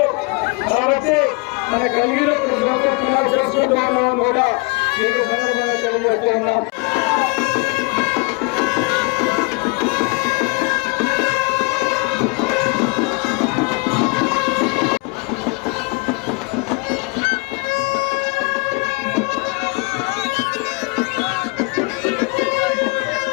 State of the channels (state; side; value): quieter; right; 29.6 dB